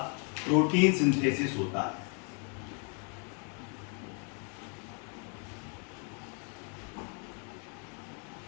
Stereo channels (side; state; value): right; quieter; 38.9 dB